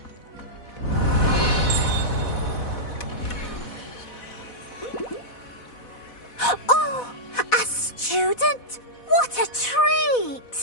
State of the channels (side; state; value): right; late; 4.1 ms